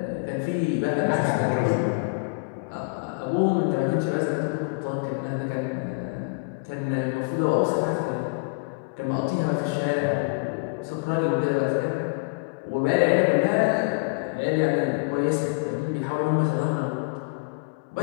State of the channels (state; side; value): quieter; right; 34.3 dB